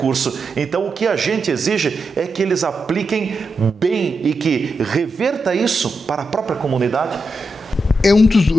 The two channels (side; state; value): both; normal; correlation 0.87